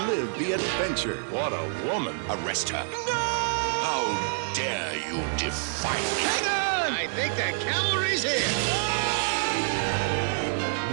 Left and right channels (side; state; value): left; silent; digital silence